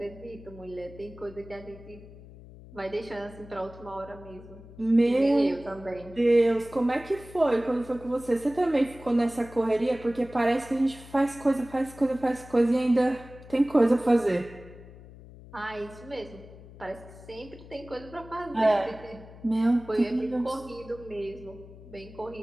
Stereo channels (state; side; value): noise; left; hum, 18 dB below the sound